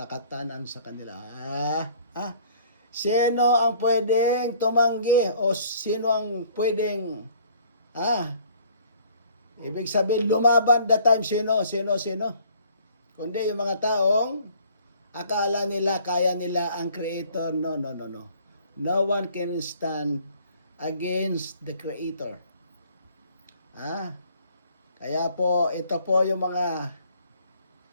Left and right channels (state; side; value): inverted; both; correlation -0.56